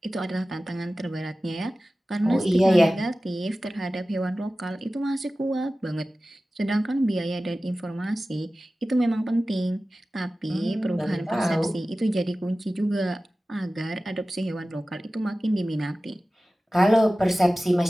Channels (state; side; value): normal; both; correlation 0.96